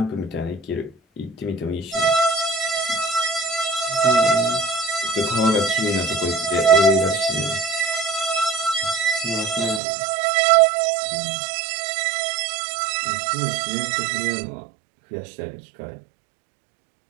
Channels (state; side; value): drops out; left; at 9.8 s